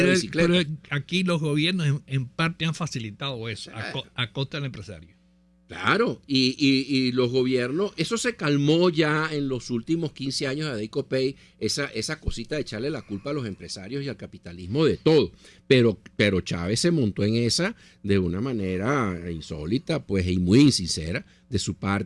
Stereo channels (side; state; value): both; identical; correlation 1.00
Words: bicicleta. Pero aquí los gobiernos en parte han facilitado eso a costa del empresario. Claro, y los gobiernos, eso se calmó ya en los últimos 15 años de Deicopey, esa cosita de echarle la culpa a los empresarios y al capitalismo de todo. Pero Chávez se montó en esa de una manera insólita, pues, y muy insincera de su